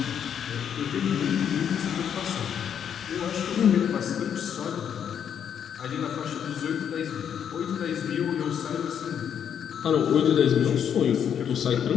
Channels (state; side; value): quieter; right; 8.5 dB